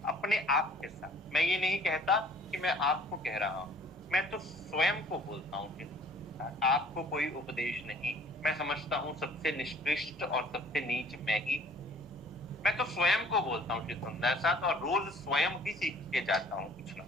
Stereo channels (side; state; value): both; normal; correlation 0.54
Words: अपने आप के साथ। मैं ये नहीं कहता कि मैं आपको कह रहा हूं, मैं तो स्वयं को बोलता हूं, आपको कोई उपदेश नहीं। मैं समझता हूं सबसे निष्कृष्ट और सबसे नीच मैं ही, मैं तो स्वयं को बोलता हूं श्री सुंदर साथ, और रोज स्वयं ही सीख के जाता हूं कुछ ना